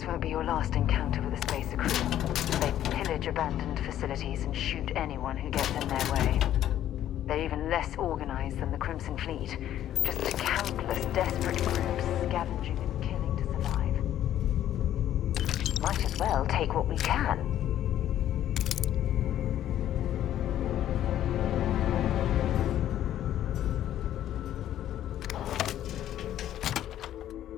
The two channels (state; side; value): quieter; right; 11.8 dB